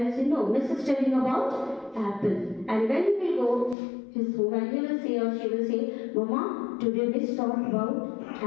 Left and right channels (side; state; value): right; drops out; at 3.8 s